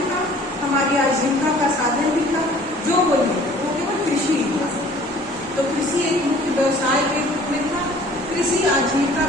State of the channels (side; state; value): both; normal; correlation 0.52